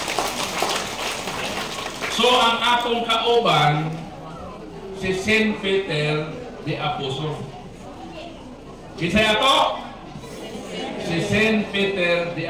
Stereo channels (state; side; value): identical; both; correlation 1.00